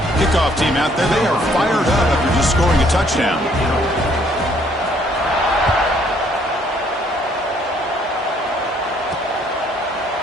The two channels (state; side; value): normal; both; correlation 0.64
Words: Kickoff team out there, they are fired up after just scoring a touchdown.